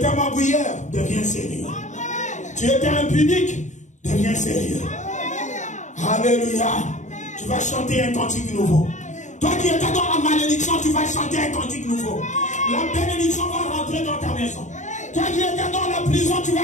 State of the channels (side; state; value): right; late; 0.35 ms